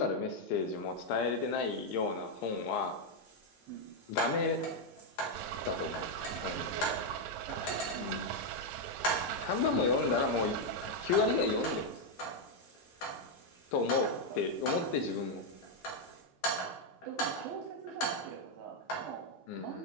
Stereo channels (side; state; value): both; normal; correlation 0.01